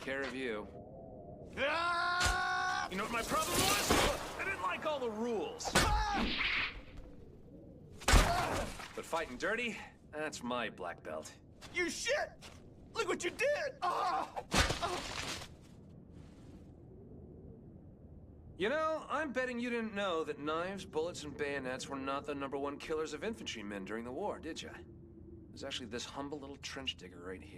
care of you. You know what my problem was? I didn't like all the rules. But fighting dirty, that's my black belt. You shit! Look what you did! You know, I'm betting you didn't know that knives, bullets, and bayonets were not the #1 killers of infantrymen during the war, did you? There's actually this humble little trench digger right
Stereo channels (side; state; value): both; identical; correlation 1.00